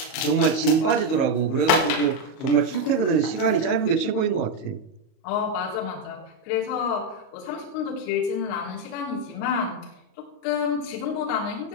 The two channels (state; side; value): late; right; 38 ms